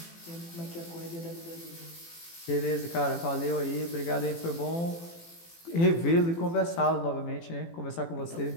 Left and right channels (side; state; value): right; late; 18 ms